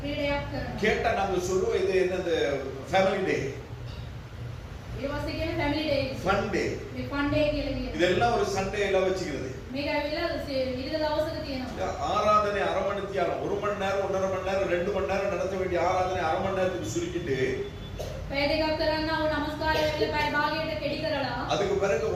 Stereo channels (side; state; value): both; identical; correlation 1.00